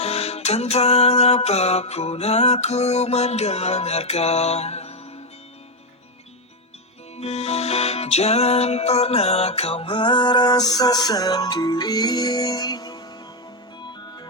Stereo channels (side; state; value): both; normal; correlation 0.04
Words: tentang apapun aku mendengarkan. Jangan pernah kau merasa sendiri.